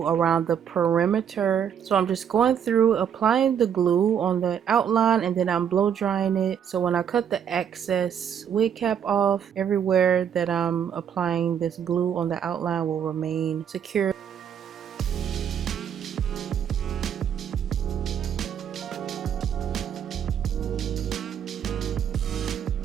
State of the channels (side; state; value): left; quieter; 8.4 dB